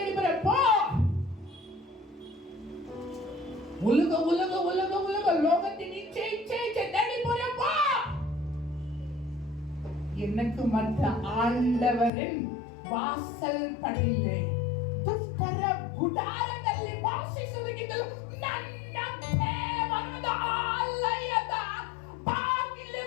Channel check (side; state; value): right; drops out; at 12.1 s